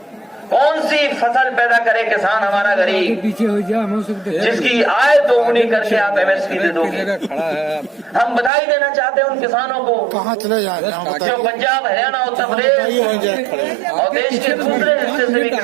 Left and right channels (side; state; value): left; drops out; at 8.5 s